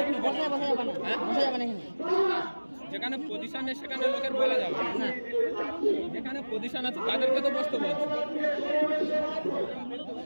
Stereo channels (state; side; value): inverted; both; correlation -1.00